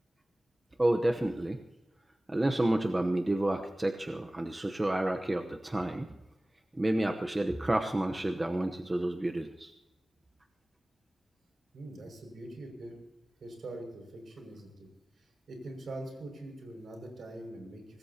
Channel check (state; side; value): normal; both; correlation 0.98